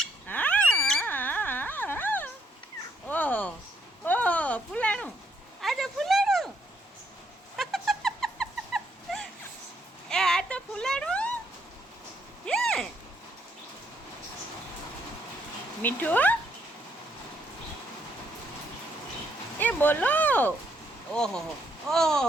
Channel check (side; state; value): both; normal; correlation 0.72